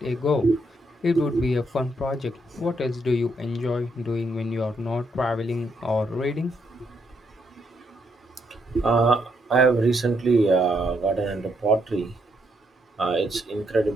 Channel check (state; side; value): normal; both; correlation 0.76